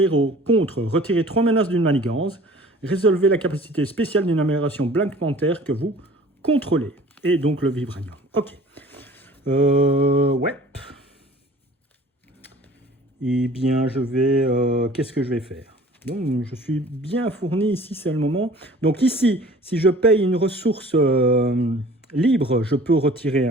contre, retirer 3 menaces d'une manigance. Résolvez la capacité spéciale d'une amélioration Black Panther que vous contrôlez. Et donc le Vibranium. Ok. Ouais. Eh bien, je vais... qu'est-ce que je vais faire? Donc, je suis bien fourni ici, c'est le moment. Donc ici, si je paye une ressource libre, je peux retirer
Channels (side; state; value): both; normal; correlation 0.48